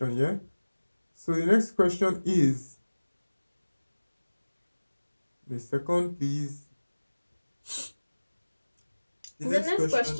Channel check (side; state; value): both; inverted; correlation -1.00